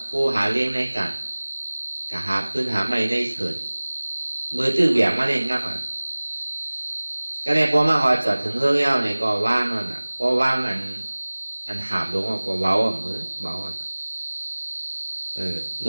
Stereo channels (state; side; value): inverted; both; correlation -1.00